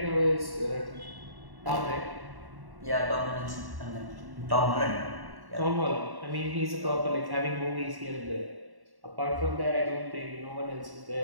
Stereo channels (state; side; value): late; left; 1.1 ms